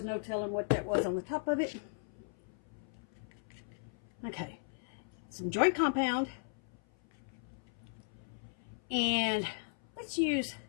no telling what that was on the top of it. Okay, some joint compound. And we'll use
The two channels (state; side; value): silent; right; 53 dB below the other